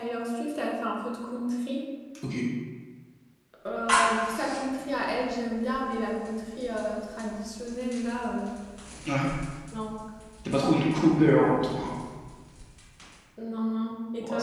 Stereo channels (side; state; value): both; identical; correlation 1.00